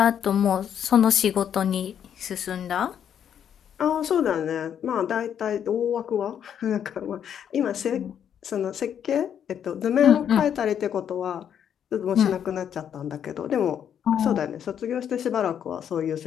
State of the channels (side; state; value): right; quieter; 8.9 dB